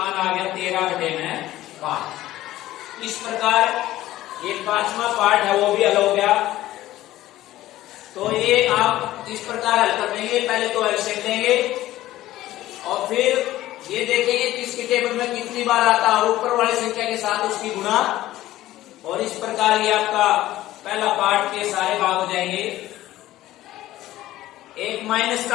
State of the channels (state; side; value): quieter; right; 15.2 dB